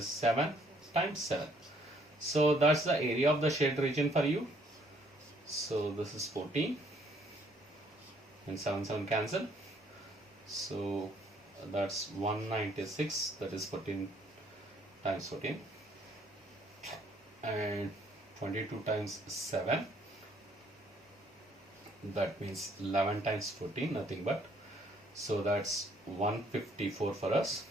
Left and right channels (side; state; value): both; normal; correlation 0.65